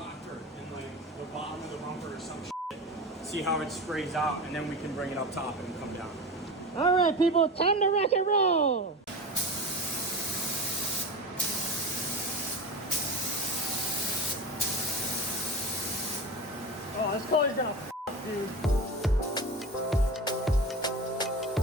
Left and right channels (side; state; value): both; normal; correlation 0.29